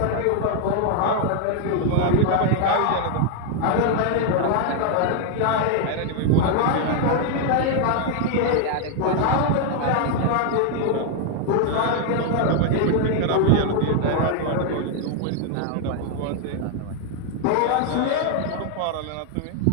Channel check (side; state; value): both; different; correlation 0.01